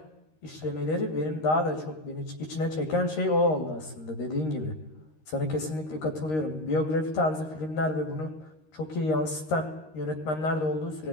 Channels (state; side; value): late; right; 13 ms